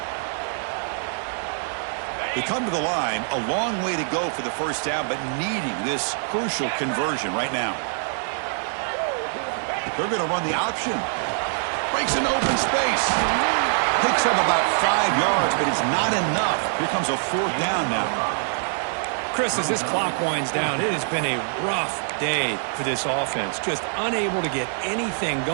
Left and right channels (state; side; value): silent; left; digital silence